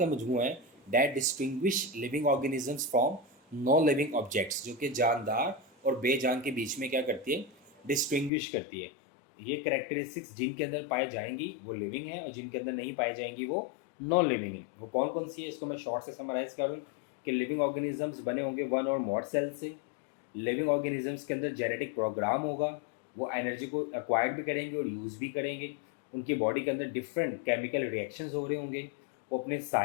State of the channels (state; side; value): drops out; right; at 8.3 s